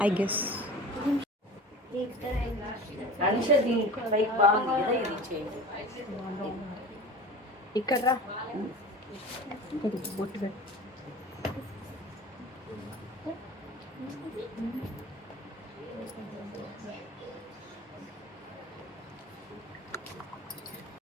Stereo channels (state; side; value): normal; both; correlation 0.36